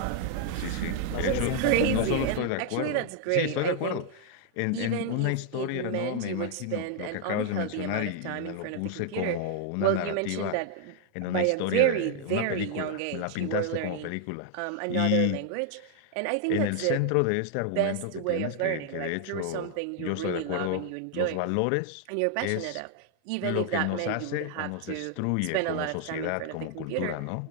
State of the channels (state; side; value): different; both; correlation 0.00